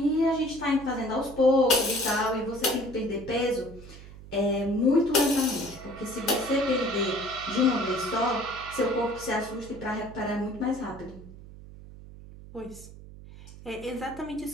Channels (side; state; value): right; noise; hum, 17 dB below the sound